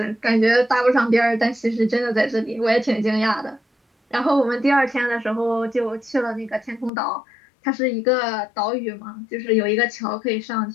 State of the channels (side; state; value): right; drops out; at 6.9 s